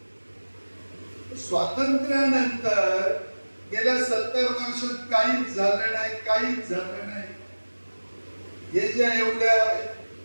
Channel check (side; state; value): both; inverted; correlation -1.00